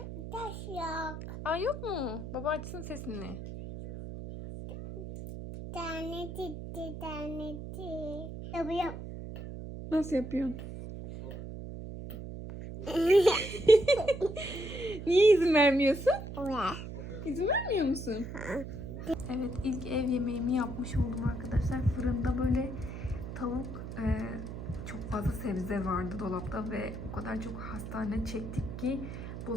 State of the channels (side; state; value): right; noise; hum, 9 dB below the sound